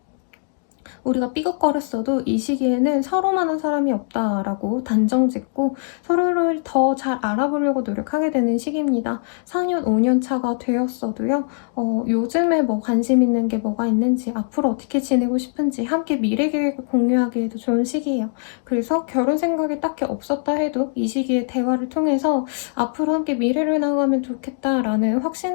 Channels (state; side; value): silent; right; 65 dB below the other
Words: 우리가 삐걱거렸어도 이 시기에는 서로만한 사람이 없다라고 단정짓고 서로를 더 잘 알아보려고 노력하게 되는 시기입니다. 4년, 5년 차가 되었어도요. 요즘에 뭐 관심 있는 게 뭐가 있는지 앞으로 어떻게 지내고 싶은지 함께 미래 계획을 공유하기에도 좋은 시기예요. 그래서 결혼 생각이 딱히 없었다 해도 이 시기에 대화를 통해서 앞으로 함께 미래를 나가면 좋겠다라는